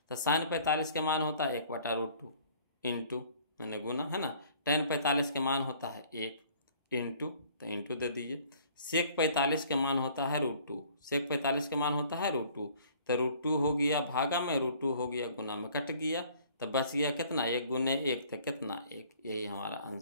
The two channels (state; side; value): inverted; both; correlation -0.55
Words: तो साइन 45 के मान होता है 1/√2 इंटू मैंने गुना है ना, टेन 45 के मान होता है 1 इंटू, तो इंटू दे दीजिए। सेक 45 के मान होता है √2, सेक 45 के मान होता है √2। तो √2 हो गया भागा में, √2 हो गया गुना में, कट गया तो बच गया कितना, 1 गुने 1 तो कितना 1। यही हमारा